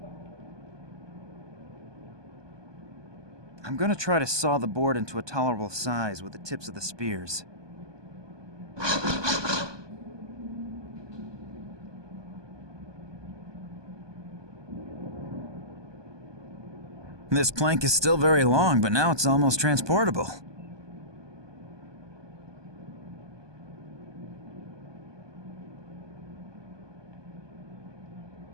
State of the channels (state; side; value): late; left; 1.2 ms